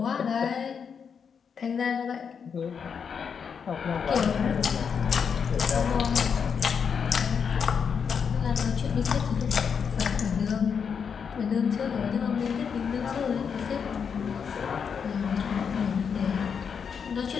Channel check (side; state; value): right; quieter; 6.6 dB